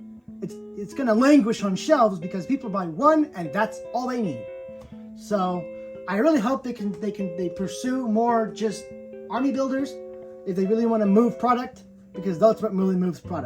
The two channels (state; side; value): identical; both; correlation 1.00